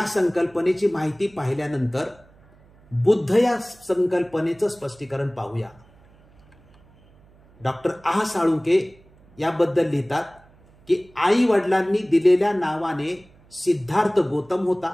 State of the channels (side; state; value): right; noise; hum, 28 dB below the sound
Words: संकल्पनेची माहिती पाहिल्यानंतर बुद्ध या संकल्पनेचं स्पष्टीकरण पाहूया. डॉक्टर आह साळुंके याबद्दल लिहितात की आई वडिलांनी दिलेल्या नावाने सिद्धार्थ गौतम